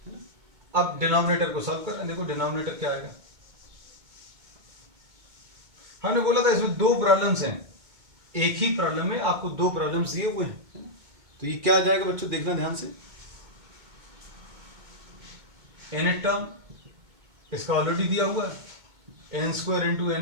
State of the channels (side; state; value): left; late; 2.2 ms